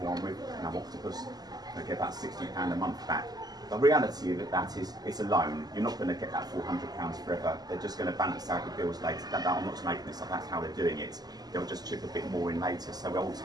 one with Octopus. I get about £60 a month back. The reality of that is it's a loan. You're not going to get that £400 forever. They're just going to balance out the bills later. I'm not making this up, that's how they're doing it. They'll just chip a bit more in later, so we'll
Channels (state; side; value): late; left; 0.19 ms